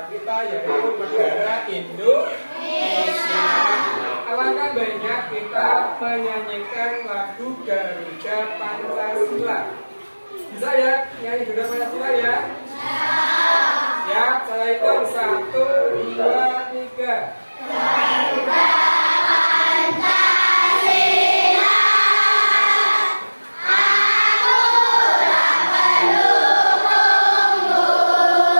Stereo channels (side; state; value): both; inverted; correlation -1.00